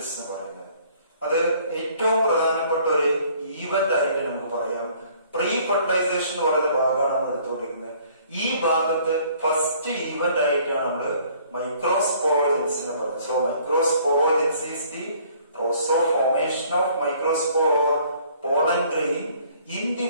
എന്ന് പറയുന്നത്. അത് ഏറ്റവും പ്രധാനപ്പെട്ട ഒരു ഈവന്റ് ആയിട്ട് നമുക്ക് പറയാം. പ്രീ ഫെർട്ടിലൈസേഷൻ എന്ന് പറയുന്ന ഭാഗമാണ് നമ്മൾ എടുത്തുകൊണ്ടിരിക്കുന്നത്. ഈ ഭാഗത്ത് ഫസ്റ്റ് ഈവന്റ് ആയിട്ടാണ് നമ്മൾ മൈക്രോസ്പോറോജെനിസിനെ പറയുന്നത്. So microsporogenesis is the process of formation of microspore or pollen grain in the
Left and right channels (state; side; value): inverted; both; correlation -0.58